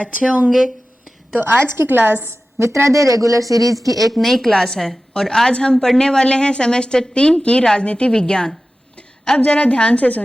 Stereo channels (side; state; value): both; normal; correlation 0.95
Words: होंगे। तो आज की क्लास मित्रादे रेगुलर सीरीज की एक नई क्लास है और आज हम पढ़ने वाले हैं सेमेस्टर 3 की राजनीति विज्ञान। अब जरा ध्यान से